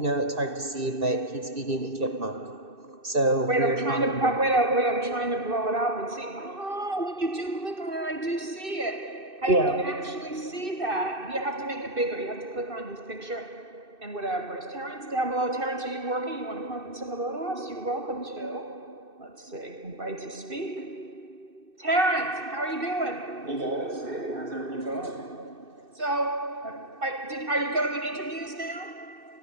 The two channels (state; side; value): late; left; 2.6 ms